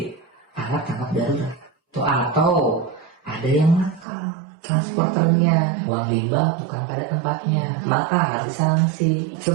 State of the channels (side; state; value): left; drops out; at 4.0 s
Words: alat tangkap darurat. Atau ada yang nakal transporternya, buang limbah bukan pada tempatnya, maka harus disanksi.